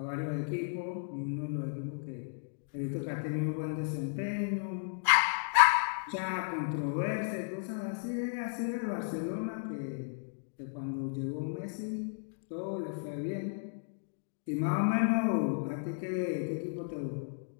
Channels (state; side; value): silent; right; digital silence